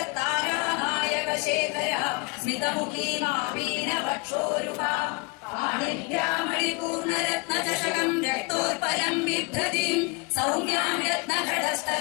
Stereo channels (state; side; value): quieter; right; 29.8 dB